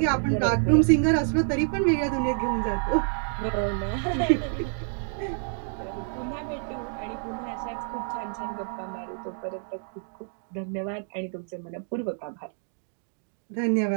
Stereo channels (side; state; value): left; silent; 58 dB below the other